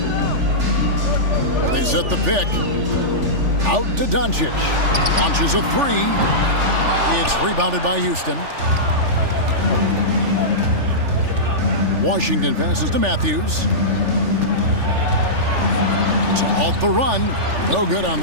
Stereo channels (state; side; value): late; left; 3.4 ms